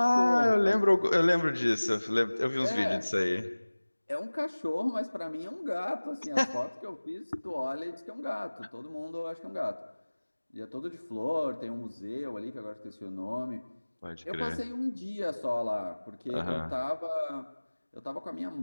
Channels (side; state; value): both; inverted; correlation -1.00